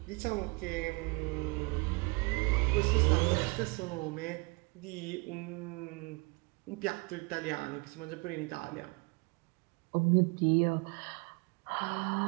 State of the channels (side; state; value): left; quieter; 29.0 dB